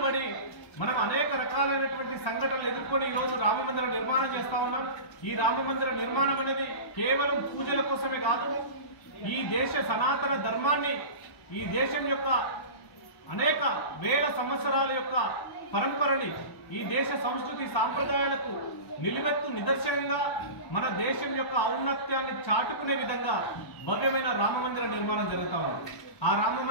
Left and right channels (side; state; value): right; late; 1.1 ms